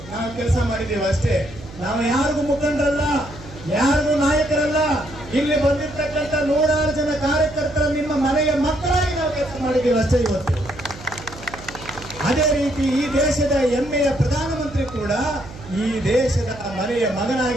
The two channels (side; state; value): right; noise; hum, 17 dB below the sound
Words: ನಾವು ಕೆಲಸ ಮಾಡಿದ್ದೇವೆ ಅಷ್ಟೇ. ನಾವು ಯಾರಿಗೂ ಮುಖಂಡರಲ್ಲ, ಯಾರಿಗೂ ನಾಯಕರಲ್ಲ. ಇಲ್ಲಿ ಬಂದಿರ್ತಕ್ಕಂಥ 106 ಜನ ಕಾರ್ಯಕರ್ತರ ನಿಮ್ಮ ಮನೆಯ ಮಕ್ಕಳಾಗಿ ನಾವು ಕೆಲಸ ಮಾಡಿದ್ದೇವೆ ಅಷ್ಟೇ ಇವತ್ತು. ಅದೇ ರೀತಿ ಈ ದೇಶದ ಹೆಮ್ಮೆಯ ಪ್ರಧಾನಮಂತ್ರಿ ಕೂಡ ಈ ದೇಶದ ಮನೆಯ